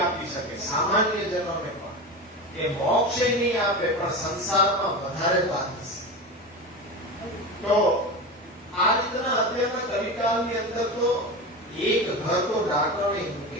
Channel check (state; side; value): normal; both; correlation 0.24